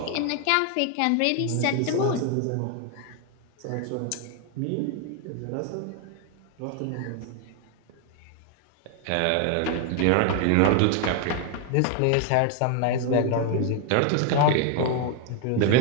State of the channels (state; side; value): different; both; correlation 0.01